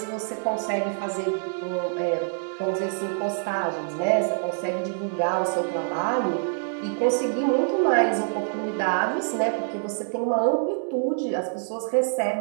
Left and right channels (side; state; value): left; silent; digital silence